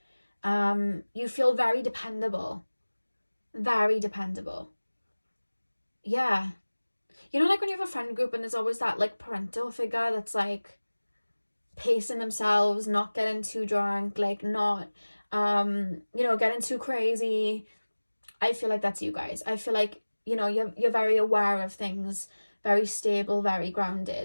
You feel very dependable. Very dependable. Yeah. You know, like when you have a friend group and there's always that like parental figure that's like pacing themselves, not getting too drunk, like not, getting too crazy. I feel like that's you guys. I feel like, you're very aware of things, very stable, very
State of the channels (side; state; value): both; inverted; correlation -1.00